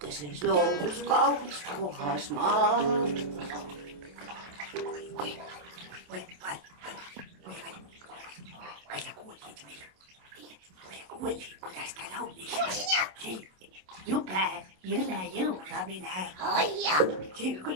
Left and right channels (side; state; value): left; late; 27 ms